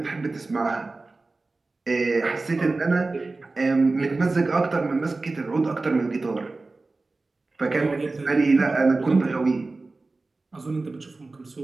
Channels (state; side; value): quieter; left; 3.5 dB